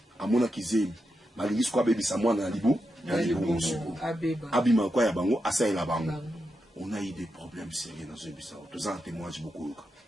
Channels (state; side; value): normal; both; correlation 0.87